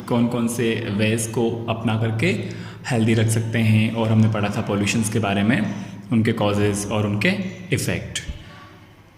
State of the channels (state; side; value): identical; both; correlation 1.00